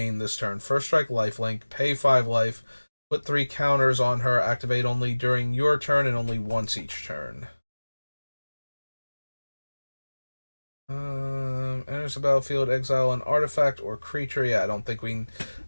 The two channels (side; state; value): both; inverted; correlation -1.00